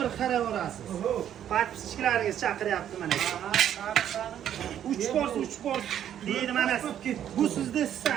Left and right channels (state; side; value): quieter; left; 10.2 dB